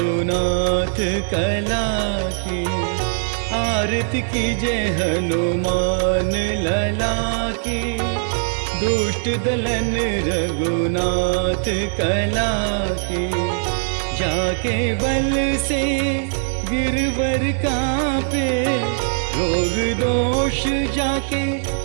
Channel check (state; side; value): silent; left; digital silence